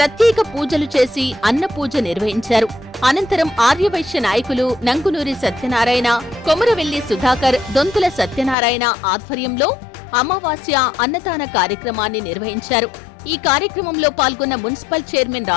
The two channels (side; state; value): right; drops out; at 8.6 s